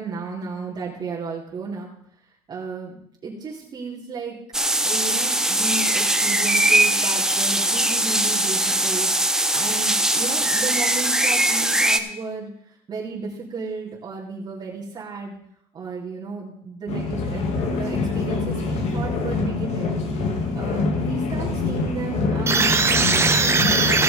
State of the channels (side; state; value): both; normal; correlation 0.33